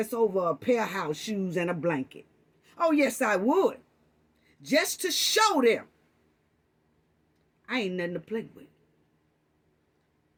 over a pair of house shoes and a blanket. Oh, yes, I would. Just to show them I ain't nothing to play with.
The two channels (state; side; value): identical; both; correlation 1.00